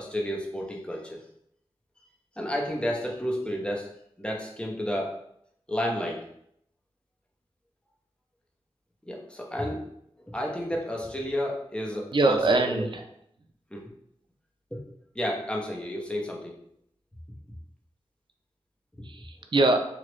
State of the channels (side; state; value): both; normal; correlation 0.74